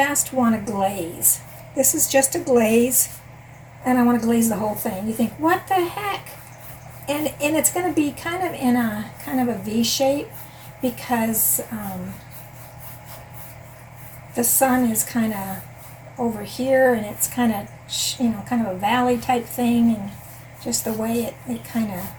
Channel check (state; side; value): identical; both; correlation 1.00